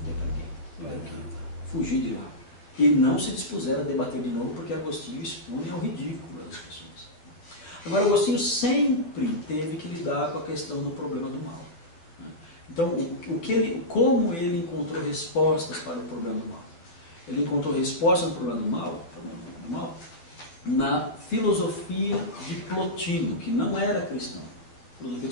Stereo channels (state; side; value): late; right; 12 ms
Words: Tiveram que fugir de lá. E não se dispuseram a debater de novo, porque Agostinho expunha ao ridículo das pessoas. Agora, Agostinho sempre teve que lidar com a questão do problema do mal. Então, como ele encontrou respostas para o problema do mal? Ele encontrou resposta no problema do mal na filosofia de Plotino, que não era cristão. Filosofia